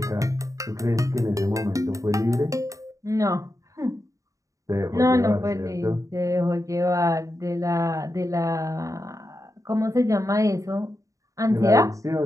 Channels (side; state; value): left; late; 0.16 ms